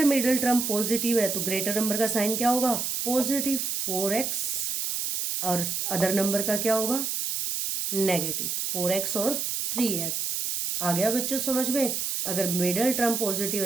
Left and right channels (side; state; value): right; noise; hiss, 1 dB below the sound